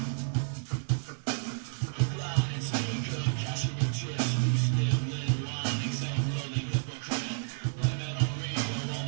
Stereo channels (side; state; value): left; silent; digital silence